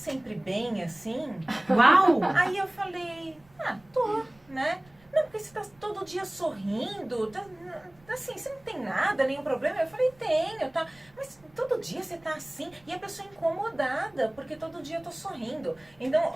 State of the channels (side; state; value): right; noise; rumble, 29 dB below the sound